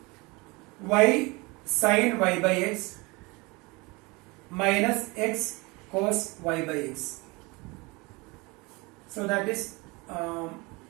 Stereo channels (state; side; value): quieter; left; 25.5 dB